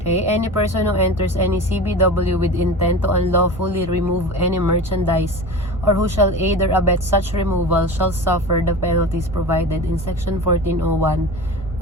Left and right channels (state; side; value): normal; both; correlation 0.32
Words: any person who enters any CBW with intent to unlawfully remove any merchandise, or who shall aid or abet such removal, shall suffer the penalties provided in Section 1401